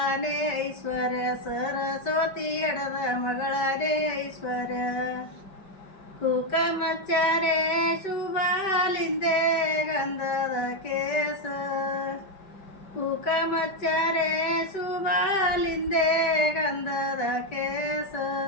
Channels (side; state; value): right; late; 5.2 ms